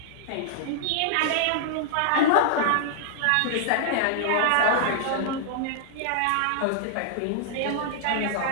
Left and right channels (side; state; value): both; different; correlation -0.01